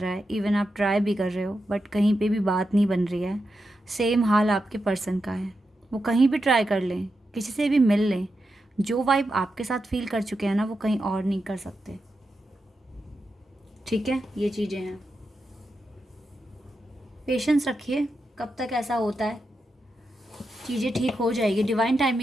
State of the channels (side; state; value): both; normal; correlation 0.87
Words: है, इवन आप ट्राई भी कर रहे हो बट कहीं पे भी बात नहीं बन रही है, सेम हाल आपके पर्सन का है। वो कहीं भी ट्राई कर लें, किसी से भी मिल लें, जो वाइब आपके साथ फील कर चुके हैं ना, वो कहीं और नहीं कर सकते। ठीक है, ये चीज़ें हैं। पेशेंस रखिए, कब तक ऐसा होता है, चीज़ें ठीक हो जाएगी। डिवाइन